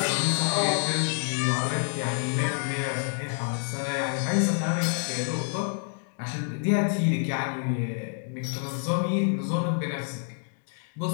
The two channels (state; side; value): silent; right; 60 dB below the other